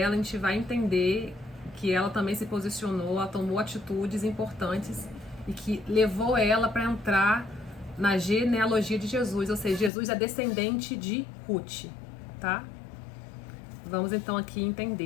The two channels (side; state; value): right; drops out; at 9.9 s